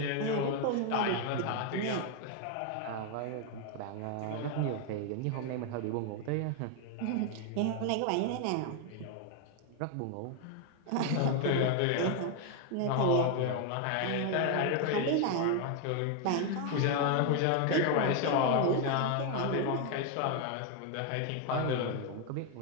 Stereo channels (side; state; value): both; different; correlation 0.01